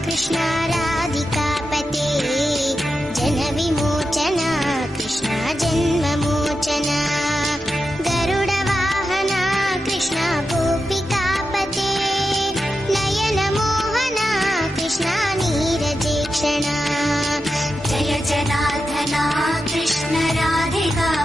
कृष्णा राधिकापते जनविमोचना कृष्णा जन्ममोचना गरुडवाहना कृष्णा गोपिकापते नयनमोहना कृष्णा नीरजेक्षणा जय जनार्दना कृष्ण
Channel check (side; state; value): both; normal; correlation 0.89